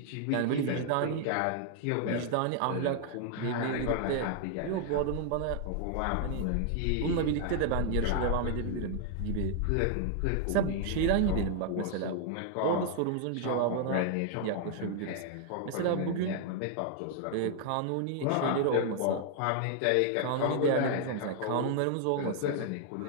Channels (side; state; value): both; different; correlation 0.00